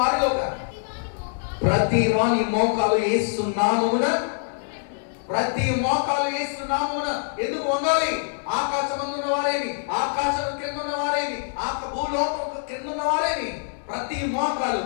వారిలో కానీ ప్రతి వాని మోకాలు యేసు నామమున ప్రతి మోకాలు యేసు నామమున ఎందుకు వంగాలి? ఆకాశమందున్న వారేమి, ఆకాశం క్రింద ఉన్న వారేమి, భూలోకం క్రింద ఉన్న వారేమి ప్రతి మోకాలు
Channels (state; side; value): silent; right; digital silence